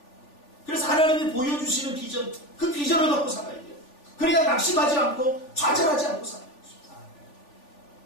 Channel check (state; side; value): late; right; 3.4 ms